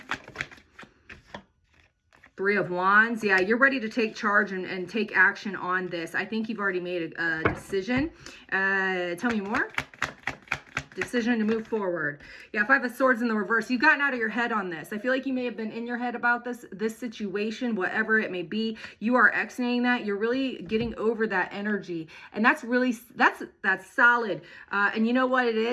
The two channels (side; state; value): both; identical; correlation 1.00